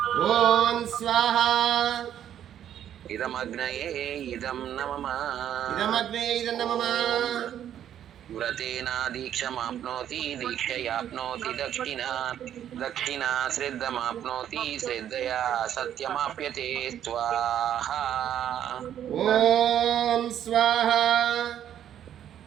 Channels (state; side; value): quieter; left; 10.4 dB